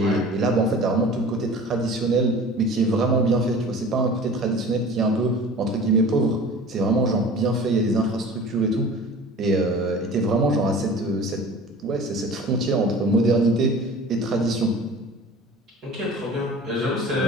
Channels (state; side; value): normal; both; correlation 0.41